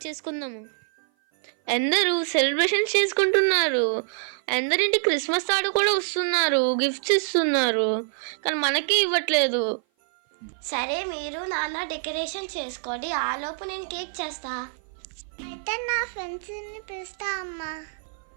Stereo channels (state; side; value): silent; left; 56 dB below the other